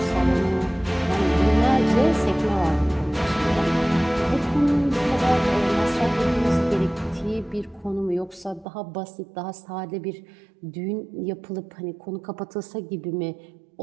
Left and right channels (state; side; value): drops out; left; at 8.7 s